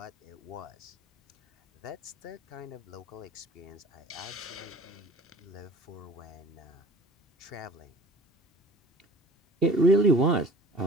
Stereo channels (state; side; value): normal; both; correlation 0.46